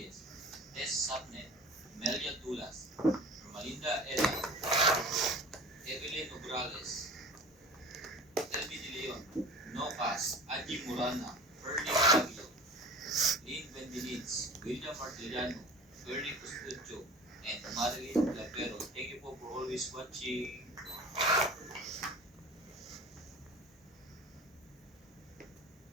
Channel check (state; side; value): normal; both; correlation 0.39